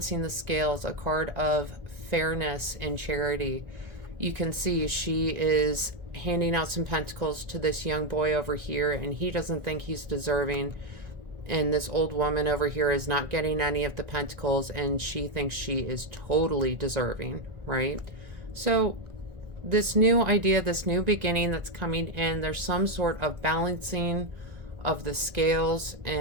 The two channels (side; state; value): left; late; 1.4 ms